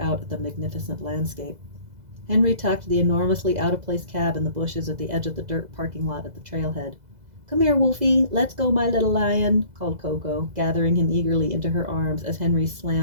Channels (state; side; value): late; left; 2.0 ms